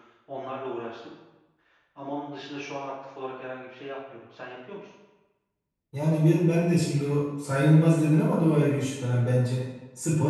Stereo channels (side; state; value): both; identical; correlation 1.00